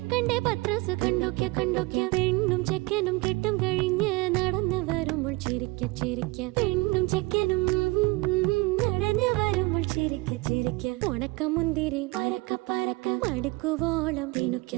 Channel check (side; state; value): left; quieter; 23.8 dB